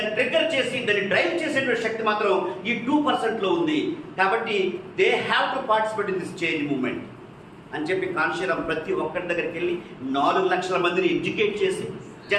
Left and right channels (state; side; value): identical; both; correlation 1.00